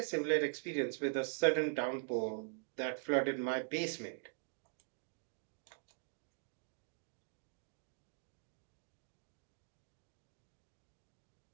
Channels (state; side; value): quieter; left; 39.3 dB